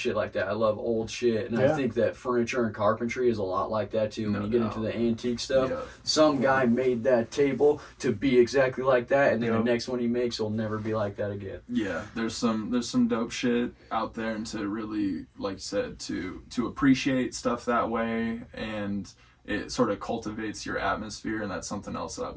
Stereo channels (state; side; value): identical; both; correlation 1.00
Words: like that. I love old shit, and I Yeah. think that furniture and carpentry is a lot like that too. When No you get doubt. into the antique stuff, Yeah. some guy made that table to be exactly like that, and then Yeah. the next one he makes will never be like that again. Yeah, there's some dope shit out there, and to really, like you said, to appreciate stuff that way, and it sort of cultivates your atmosphere, and that's something else that I've